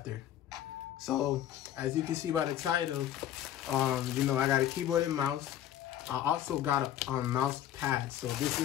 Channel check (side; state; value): right; quieter; 11.5 dB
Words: So, as you can see by the title, you know, I got a keyboard and mouse. I also got a mouse pad. So this